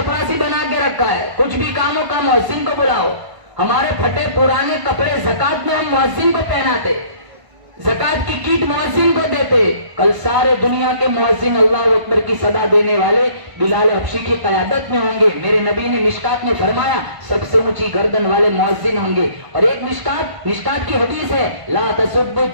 बना के रखा है। कुछ भी काम हो का मुअज्जिन को बुलाओ। हमारे फटे पुराने कपड़े ज़कात में हम मुअज्जिन को पहनाते, ज़कात की कीट मुअज्जिन को देते। कल सारे दुनिया के मुअज्जिन अल्लाह अकबर की सदा देने वाले बिलाल हबशी की क़यादत में होंगे। मेरे नबी ने मिशकात में फरमाया सबसे ऊंची गर्दन वाले मुअज्जिन होंगे। और एक मिशकात की हदीस है, ला तसुब्बु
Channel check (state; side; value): late; left; 1.5 ms